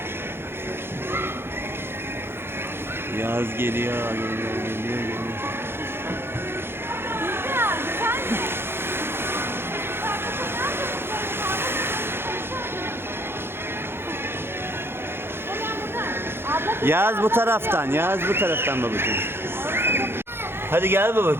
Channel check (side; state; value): left; late; 0.11 ms